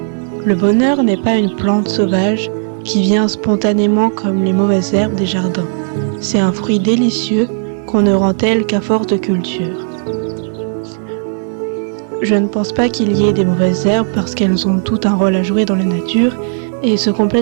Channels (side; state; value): left; silent; digital silence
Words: Le bonheur n'est pas une plante sauvage qui vient spontanément comme les mauvaises herbes des jardins. C'est un fruit délicieux qu'on ne rend tel qu'à force de culture. Je ne pense pas qu'il y ait des mauvaises herbes parce qu'elles ont tout un rôle à jouer dans la nature et se